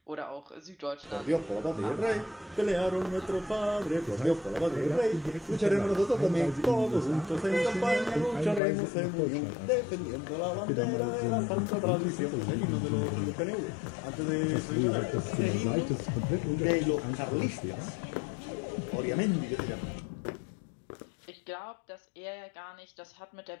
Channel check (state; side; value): drops out; right; at 8.6 s